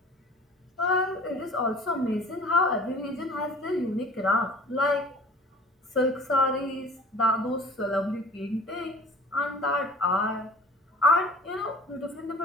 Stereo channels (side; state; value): both; normal; correlation 0.45